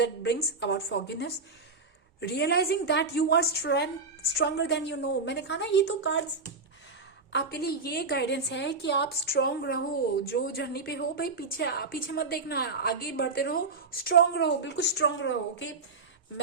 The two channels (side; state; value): left; quieter; 4.0 dB